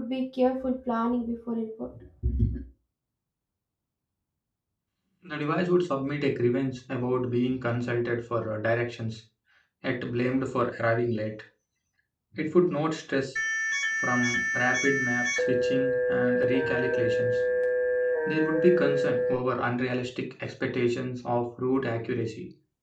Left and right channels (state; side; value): identical; both; correlation 1.00